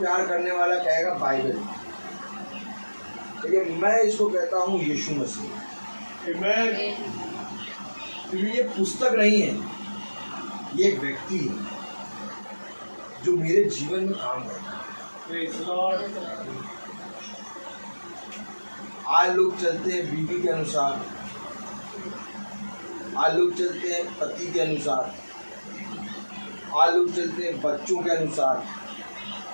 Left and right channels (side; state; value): both; inverted; correlation -1.00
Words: करने वाला कहेगा बाइबल, लेकिन मैं इसको कहता हूँ यीशु मसीह। Amen। क्योंकि ये पुस्तक नहीं है, ये एक व्यक्ति है जो मेरे जीवन में काम करता है। Praise the Lord। आज लोग चलते हैं बीवी के अनुसार, आज लोग चलते हैं पति के अनुसार, आज लोग चलते हैं बच्चों के अनुसार,